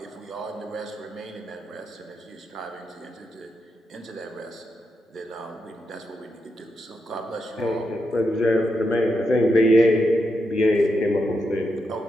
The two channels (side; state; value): both; normal; correlation 0.84